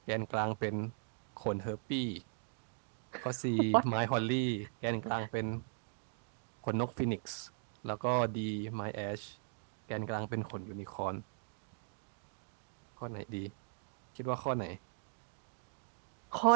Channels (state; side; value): silent; left; digital silence